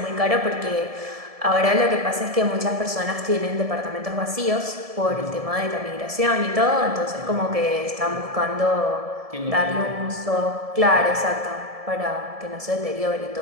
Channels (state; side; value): late; left; 1.7 ms